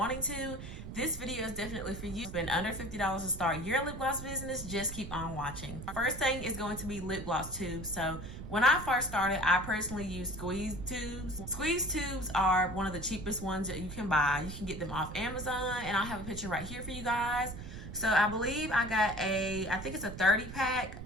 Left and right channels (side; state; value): right; noise; rumble, 10 dB below the sound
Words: to, this video is definitely for you. Spend under $50 to start your lip gloss business. Just keep on watching. First thing is going to be lip gloss tubes. So when I first started, I personally used squeeze tubes. Squeeze tubes are one of the cheapest ones that you can buy. You can get them off Amazon, and I'll have a picture right here for you guys. So I believe I got I think it's a 30 pack